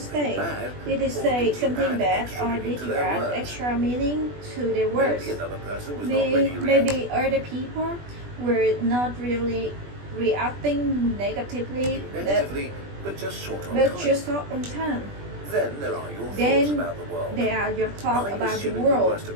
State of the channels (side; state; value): left; late; 20 ms